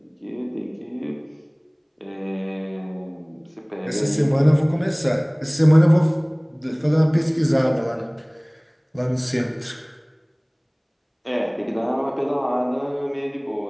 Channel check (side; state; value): both; identical; correlation 1.00